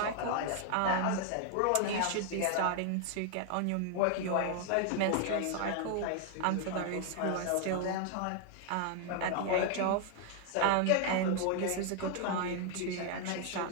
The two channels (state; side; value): different; both; correlation 0.00